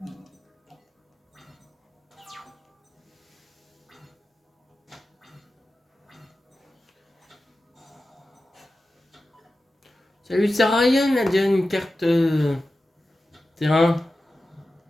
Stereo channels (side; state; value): both; normal; correlation 0.94